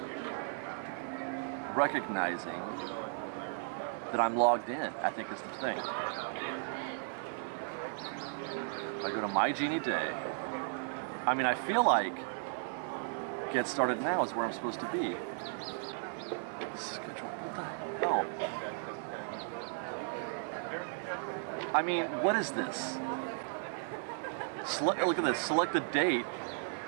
recognizing that I'm logged in, I think is the thing. If I go to My Genie Day, I mean, I feel like Get Started Now is where I'm supposed to be. Schedule, what the hell? I mean, what is this? Look at this, select the date,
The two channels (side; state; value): left; silent; 54 dB below the other